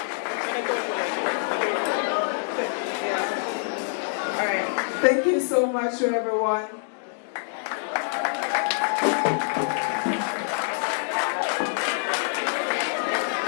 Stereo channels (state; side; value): silent; right; digital silence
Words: All right. Thank you so much to everyone.